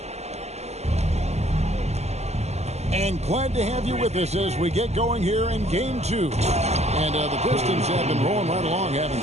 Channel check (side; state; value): left; late; 0.32 ms